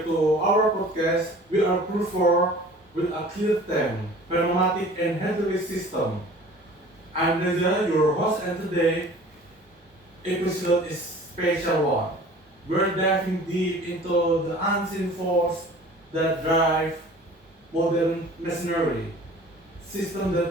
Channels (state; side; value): normal; both; correlation 0.46